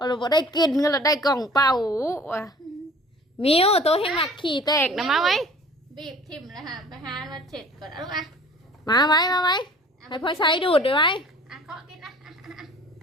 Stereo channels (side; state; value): both; normal; correlation 0.48